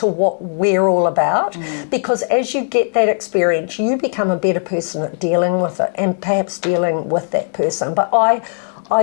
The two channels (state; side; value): silent; right; digital silence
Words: what we're all about, because as you get that experience, you become a better person at dealing with it, and perhaps dealing with that person. But I